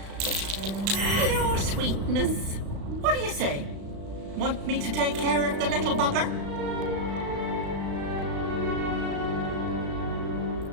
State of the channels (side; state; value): left; late; 36 ms